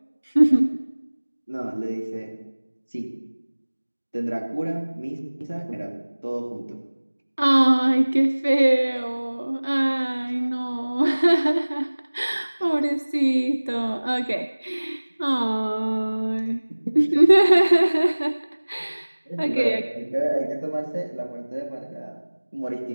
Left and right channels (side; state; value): both; inverted; correlation -1.00